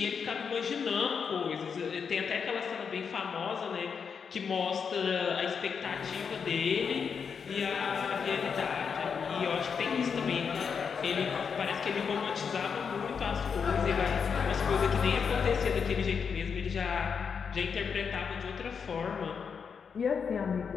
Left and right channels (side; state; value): right; quieter; 6.3 dB